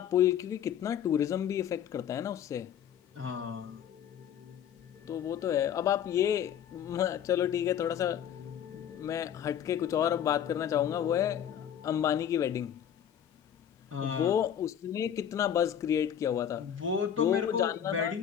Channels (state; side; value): quieter; right; 9.4 dB